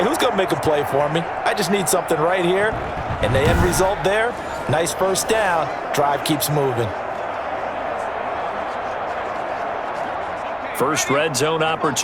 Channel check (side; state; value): both; identical; correlation 1.00